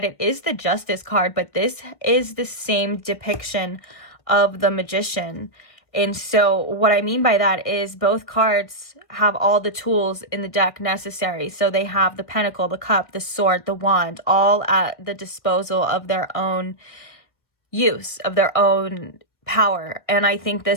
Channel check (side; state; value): right; late; 1.7 ms